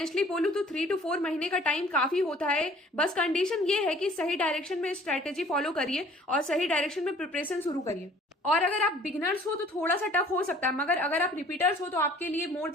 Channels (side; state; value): both; normal; correlation 0.53